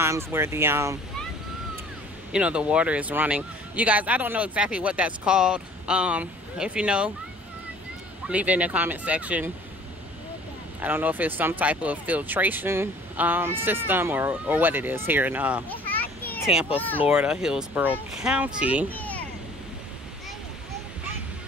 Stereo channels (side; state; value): both; normal; correlation 0.51